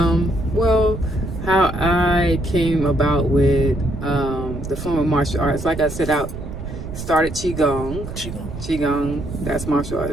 Well, how I came about with the form of martial arts, like I said, I started Qigong. That's martial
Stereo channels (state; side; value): noise; right; rumble, 9 dB below the sound